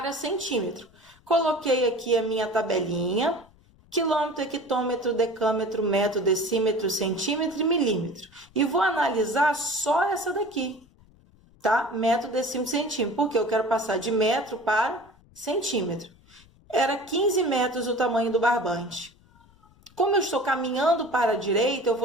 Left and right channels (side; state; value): left; noise; rumble, 29 dB below the sound